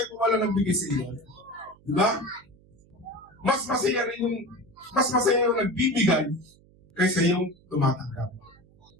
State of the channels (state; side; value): noise; right; hum, 28 dB below the sound